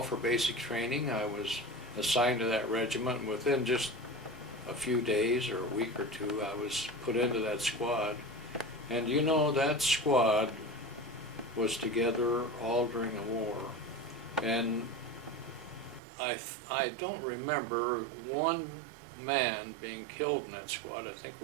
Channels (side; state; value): left; drops out; at 16.0 s